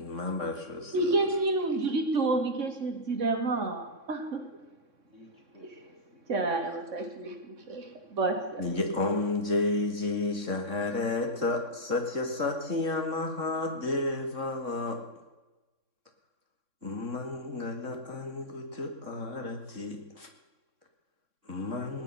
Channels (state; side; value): late; left; 3.6 ms